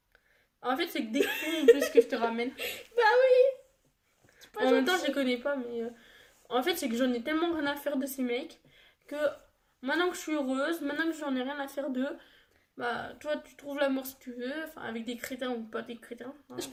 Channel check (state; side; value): identical; both; correlation 1.00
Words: En fait, c'est que des cons en plus que je te ramène. Bah oui. C'est pas En même temps, gentil. je les connais pas, mais. En fait, c'est que j'en ai tellement rien à faire de ces mecs que maintenant que je suis heureuse, maintenant que j'en ai rien à faire d'eux, bah, toi, tu trouves l'amour si tu veux, enfin, avec des crétins ou pas des crétins. Hein. Je